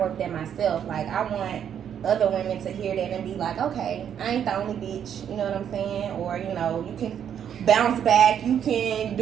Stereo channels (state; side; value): quieter; left; 8.9 dB